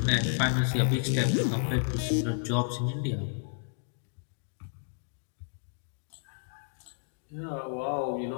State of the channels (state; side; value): silent; right; digital silence